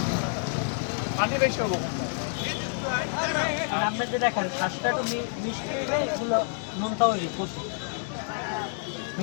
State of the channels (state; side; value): silent; right; 59 dB below the other